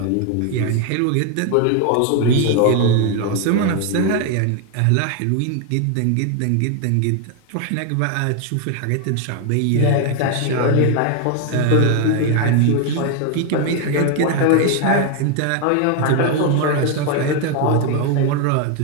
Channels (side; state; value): both; different; correlation 0.01